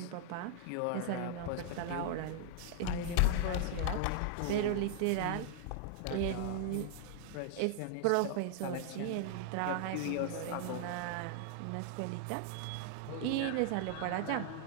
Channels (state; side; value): different; both; correlation 0.00